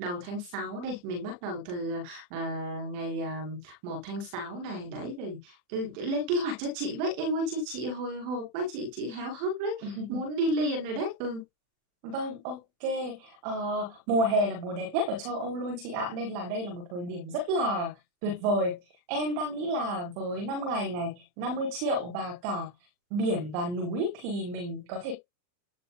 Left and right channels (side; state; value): left; late; 40 ms